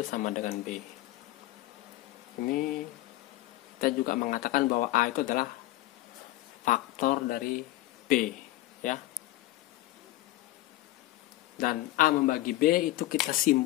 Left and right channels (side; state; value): right; quieter; 16.7 dB